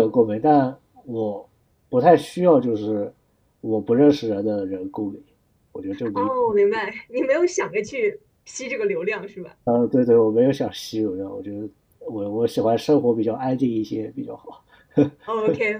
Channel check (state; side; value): identical; both; correlation 1.00